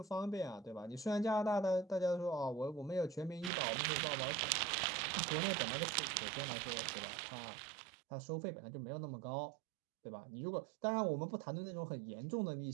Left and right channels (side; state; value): left; drops out; at 3.5 s